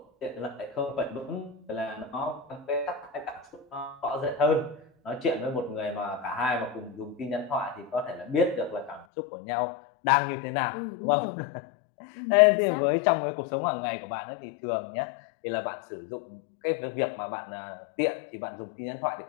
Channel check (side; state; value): right; drops out; at 9.1 s